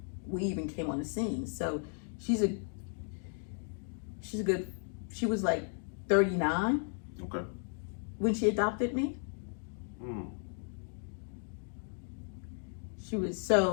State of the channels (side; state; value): right; silent; 54 dB below the other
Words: we even came on the scene. So she was like 39. Okay. When she adopted me. She was